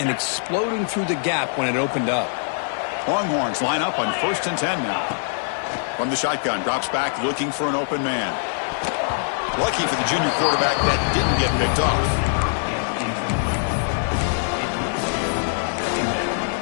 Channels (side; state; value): right; silent; 62 dB below the other